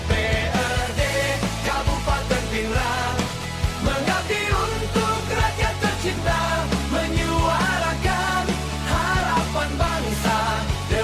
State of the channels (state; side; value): identical; both; correlation 1.00